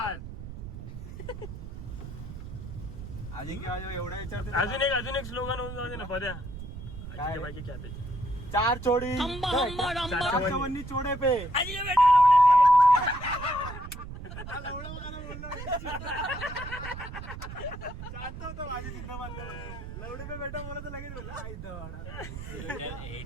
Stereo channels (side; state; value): right; noise; rumble, 10 dB below the sound